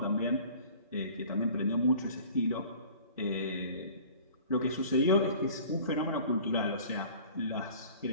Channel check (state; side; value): inverted; both; correlation -0.47